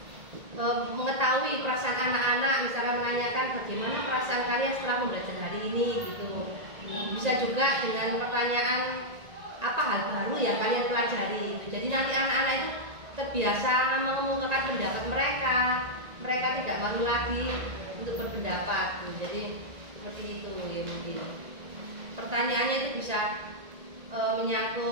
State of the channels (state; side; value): late; left; 1.8 ms